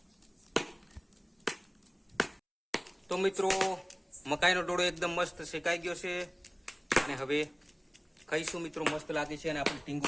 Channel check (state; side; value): identical; both; correlation 1.00